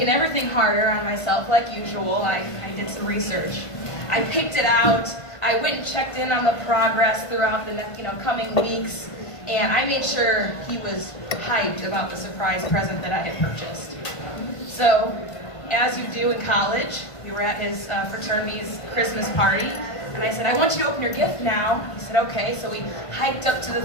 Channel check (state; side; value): late; right; 1.5 ms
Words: everything harder on myself like usual, I did some research. I picked it out. I went and checked in on the progress throughout the coming weeks, and I made sure he was hyped about the surprise present that I had purchased. So, as you do in college, we were at his fraternity's Christmas party, and I said, I want you to open your gift now. He said, okay. So we hiked up to the